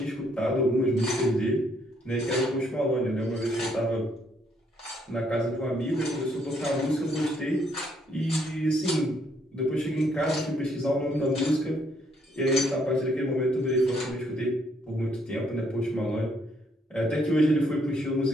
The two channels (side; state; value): both; normal; correlation 0.70